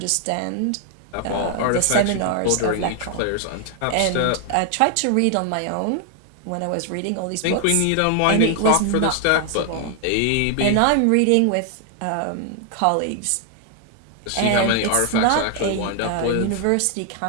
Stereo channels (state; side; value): different; both; correlation 0.00